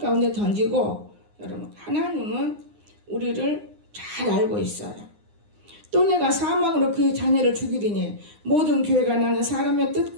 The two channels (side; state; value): left; late; 9.7 ms